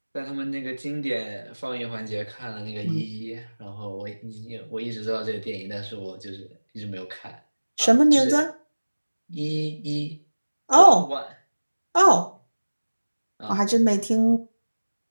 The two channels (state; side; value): inverted; both; correlation -1.00